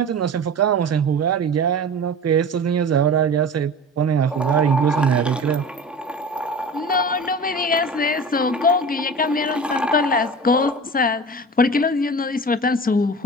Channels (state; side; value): normal; both; correlation 0.35